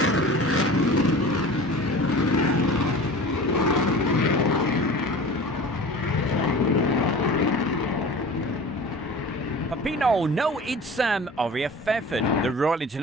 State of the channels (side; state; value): both; normal; correlation 0.39